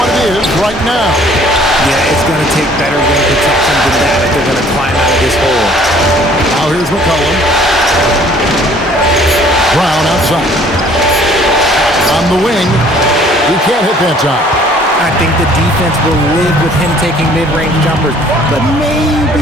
it is right now. Yeah, it's going to take better rim protection than that if they're going to climb out of this hole. Now here's McCollum. Brown outside. On the wing. He can't hit that time. I think the defense will live with him taking mid-range jumpers, but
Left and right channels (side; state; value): both; normal; correlation 0.56